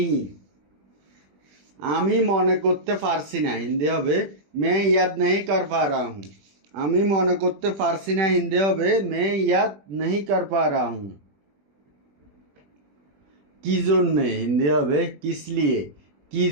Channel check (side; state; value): left; late; 20 ms